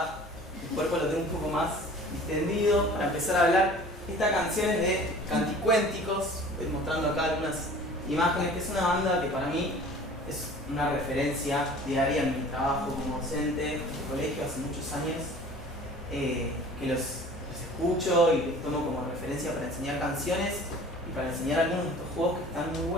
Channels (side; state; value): both; normal; correlation 0.46